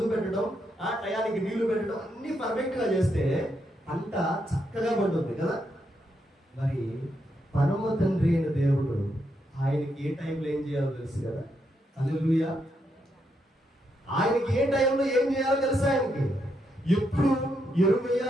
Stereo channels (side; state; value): both; normal; correlation 0.80